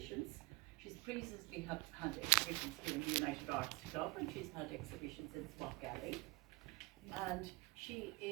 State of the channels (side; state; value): left; quieter; 25.3 dB